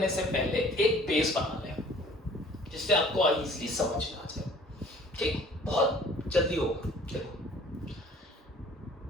से पहले एक बेस बना लें जिससे आपको इजीली समझ में आ जाए। ठीक, बहुत जल्दी होगा। देखो,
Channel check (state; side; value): normal; both; correlation 0.52